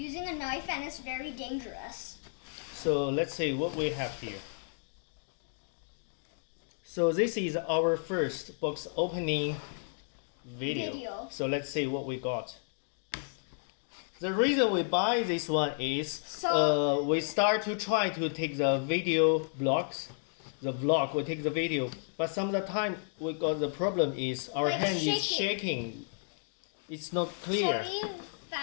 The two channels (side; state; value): right; silent; digital silence